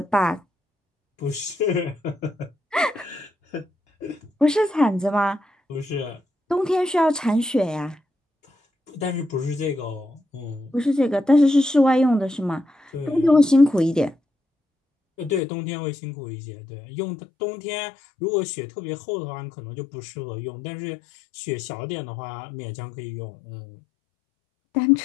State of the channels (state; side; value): drops out; right; at 15.4 s